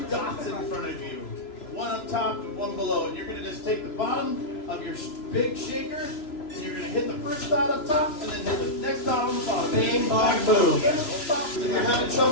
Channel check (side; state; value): right; late; 3.0 ms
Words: dots in front of you, one up top and one below, and you're gonna just take the bottom of your big shaker, and you're gonna hit the first dot up top, and then hit the next dot on the bottom. Bing, bong, boom. If you're having